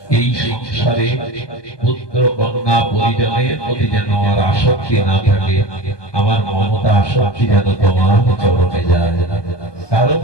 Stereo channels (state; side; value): late; right; 1.2 ms